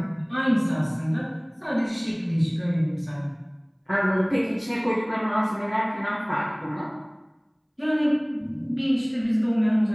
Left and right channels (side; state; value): both; identical; correlation 1.00